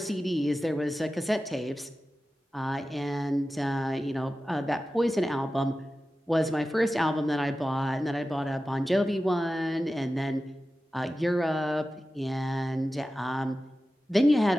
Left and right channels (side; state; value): both; normal; correlation 0.94